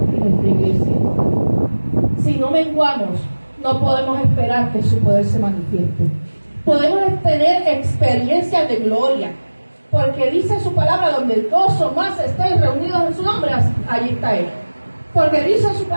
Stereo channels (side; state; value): both; inverted; correlation -1.00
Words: y nuestra iglesia. Si no menguamos, no podemos esperar que su poder se manifieste. Podemos tener experiencias de gloria, porque dice su palabra, donde 2 o más estén reunidos en su nombre, allí está Él. Porque dice su